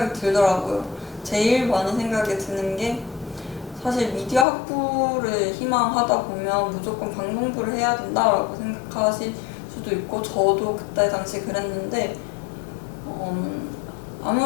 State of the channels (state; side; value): drops out; right; at 4.5 s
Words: 들더라고요. 제일 많은 생각이 드는 게, 사실 미디어 학부를 희망하다 보면 무조건 방송부를 해야 된다라고 생각하실 수도 있고, 저도 그때 당시 그랬는데,